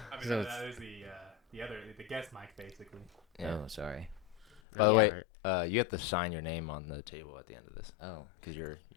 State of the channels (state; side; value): drops out; right; at 4.6 s